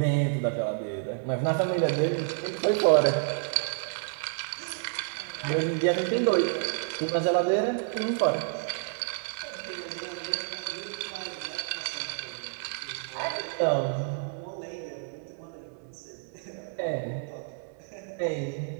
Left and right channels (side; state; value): left; silent; 58 dB below the other